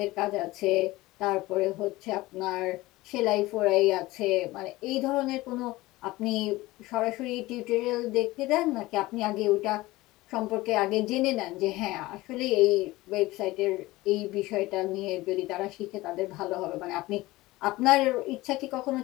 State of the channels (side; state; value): right; quieter; 19.2 dB